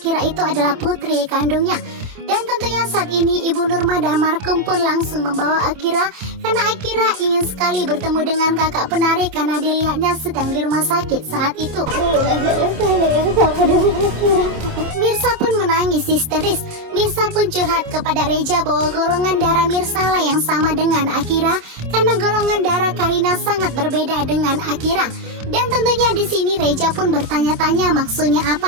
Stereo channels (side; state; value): left; late; 27 ms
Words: itu adalah putri kandungnya. Dan tentunya saat ini Ibu Nurma dan Markum pun langsung membawa Akira karena Akira ingin sekali bertemu dengan kakak penari karena dilihatnya sedang di rumah sakit saat itu. Mirsa pun menangis histeris. Mirsa pun curhat kepada Reja bahwa golongan darah Mirsa lah yang sama dengan Akira karena golongan darah Karina sangat berbeda dengan Akira. Dan tentunya di sini Reja pun bertanya-tanya maksudnya